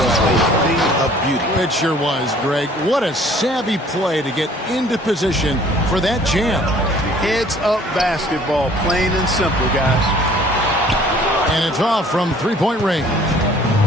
a thing of beauty. It sure was, Greg. What a savvy play to get into position for that jam. Heads-up basketball, plain and simple, guys. And it's off from three-point range.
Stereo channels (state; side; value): normal; both; correlation 0.54